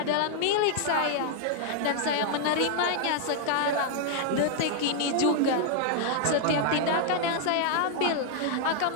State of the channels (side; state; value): both; different; correlation 0.00